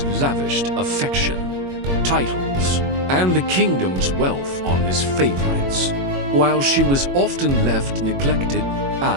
lavished affection, titles, and the kingdom's wealth on his favorites, while she was often left neglected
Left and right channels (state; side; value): late; left; 22 ms